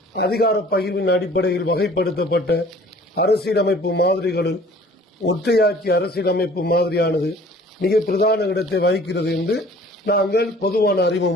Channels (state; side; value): normal; both; correlation 0.51